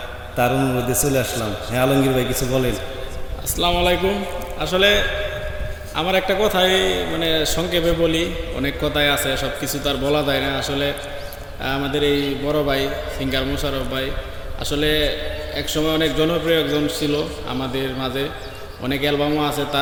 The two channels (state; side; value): identical; both; correlation 1.00